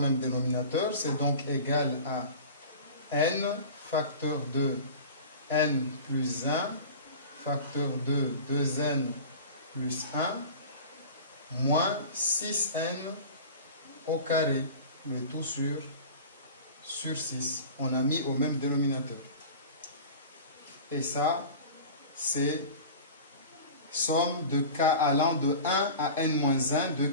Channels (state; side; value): inverted; both; correlation -0.37